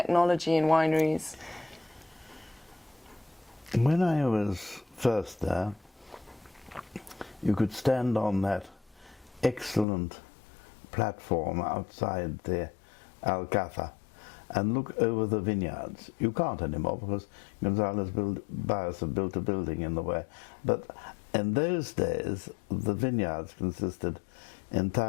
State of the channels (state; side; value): drops out; right; at 9.9 s